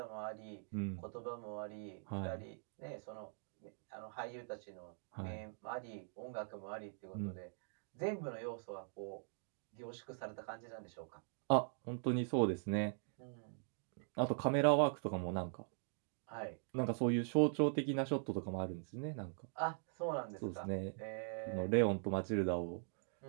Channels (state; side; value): silent; left; digital silence